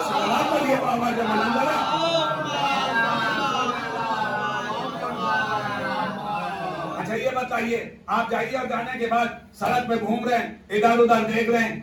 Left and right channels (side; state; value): both; identical; correlation 1.00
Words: اچھا یہ بتائیے, آپ جائیے اور جانے کے بعد سڑک پہ گھوم رہے ہیں, ادھر ادھر دیکھ رہے ہیں,